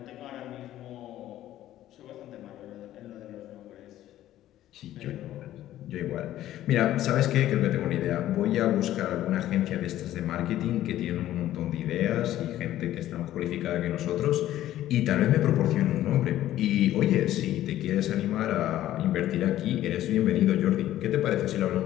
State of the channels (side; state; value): right; quieter; 13.4 dB